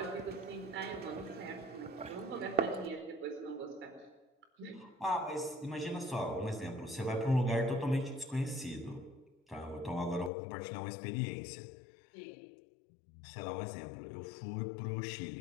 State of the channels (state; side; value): drops out; right; at 10.3 s